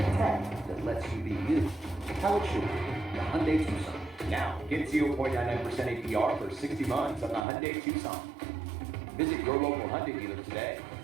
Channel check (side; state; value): left; drops out; at 7.5 s